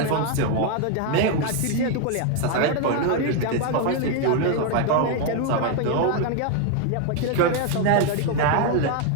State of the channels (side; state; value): both; different; correlation 0.01